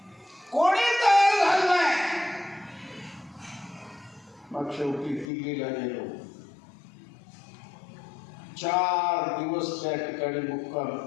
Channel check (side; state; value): right; drops out; at 5.3 s